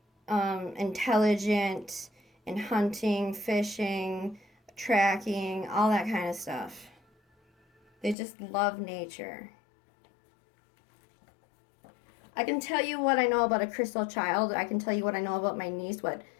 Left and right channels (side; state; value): right; drops out; at 8.2 s